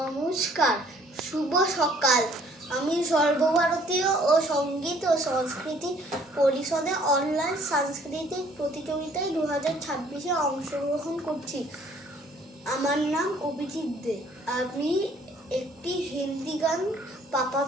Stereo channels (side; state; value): both; normal; correlation 0.59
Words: নমস্কার, শুভ সকাল। আমি সর্বভারতীয় ও সঙ্গীত ও সংস্কৃতি পরিষদে অনলাইন সাংস্কৃতিক প্রতিযোগিতায় 2026-এ অংশগ্রহণ করছি। আমার নাম অভিজিৎ দে। আমি একটি হিন্দি গান পাপা